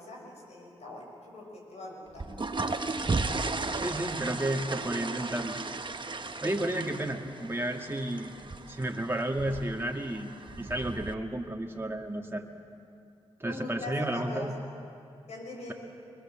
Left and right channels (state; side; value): normal; both; correlation 0.68